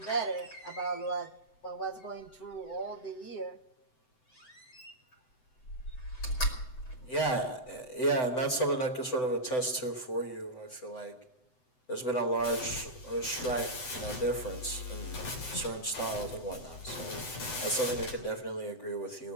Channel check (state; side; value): late; right; 7.9 ms